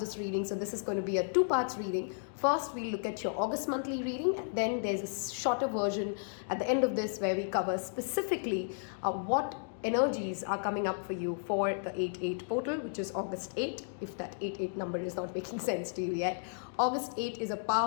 reading. So this is going to be a 2-part reading. First, we'll look at your August monthly reading, and then there's a shorter version at the end of this where we cover specifically what energies are coming up for you for the 8-8 portal, which is August 8, if that 8-8 number is not making sense to you yet. August 8 is a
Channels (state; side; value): silent; right; digital silence